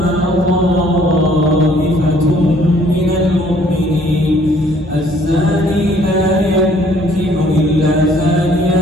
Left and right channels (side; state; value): both; normal; correlation 0.60